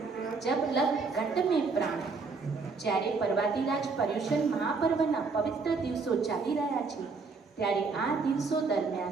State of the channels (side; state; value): left; quieter; 4.4 dB